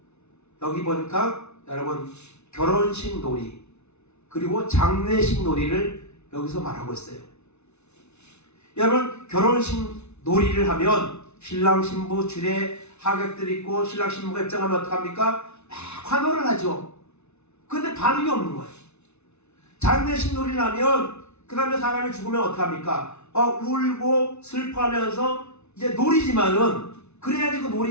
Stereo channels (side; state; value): right; late; 0.81 ms